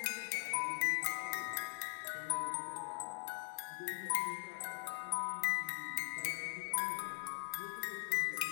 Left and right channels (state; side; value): silent; right; digital silence